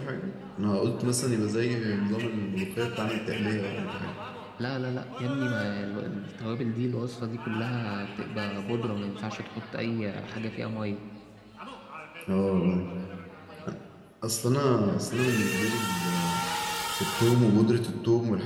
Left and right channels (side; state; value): both; identical; correlation 1.00